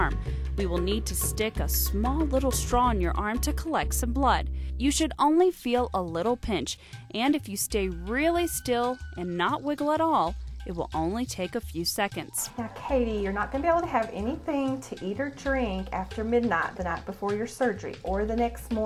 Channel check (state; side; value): identical; both; correlation 1.00